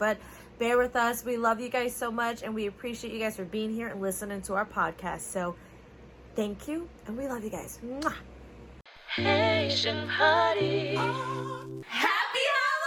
bear with us. We love you guys so much. And we appreciate you guys for being here and listening to our podcast. So thank you. And we love you guys. Mwah. Asian Party. Happy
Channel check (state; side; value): identical; both; correlation 1.00